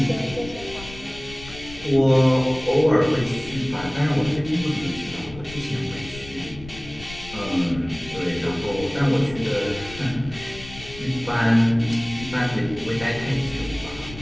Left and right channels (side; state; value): left; noise; rumble, 15 dB below the sound